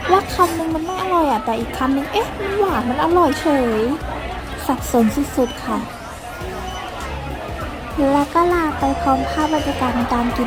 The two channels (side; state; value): both; identical; correlation 1.00